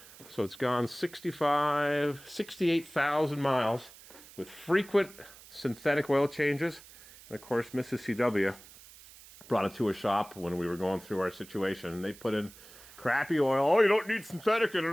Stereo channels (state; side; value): noise; right; hiss, 20 dB below the sound